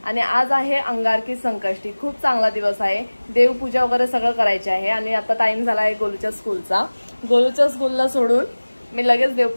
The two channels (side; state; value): both; inverted; correlation -1.00